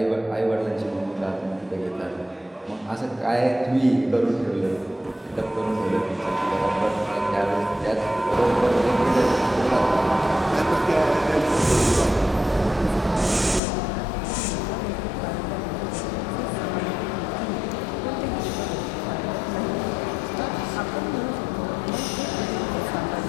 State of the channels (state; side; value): drops out; right; at 13.6 s